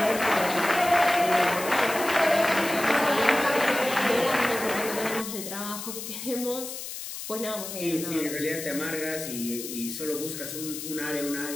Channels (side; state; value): left; noise; hiss, 8 dB below the sound